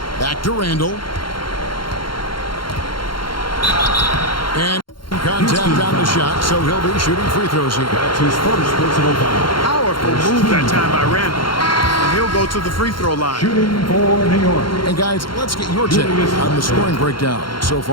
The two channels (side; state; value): right; late; 0.73 ms